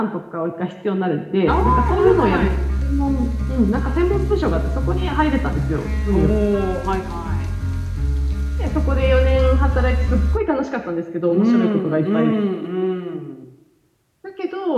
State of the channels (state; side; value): identical; both; correlation 1.00